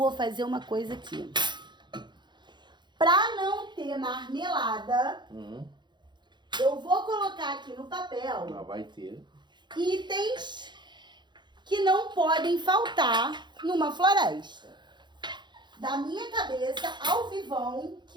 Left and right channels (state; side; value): late; left; 0.22 ms